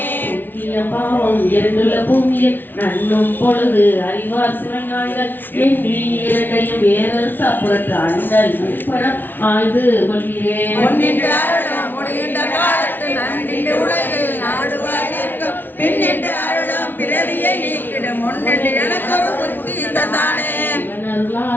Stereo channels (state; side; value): late; right; 0.093 ms